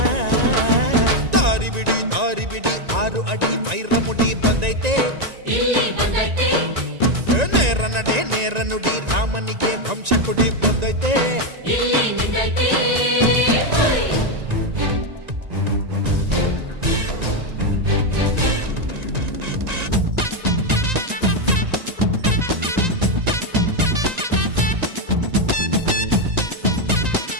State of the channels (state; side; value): late; left; 1.9 ms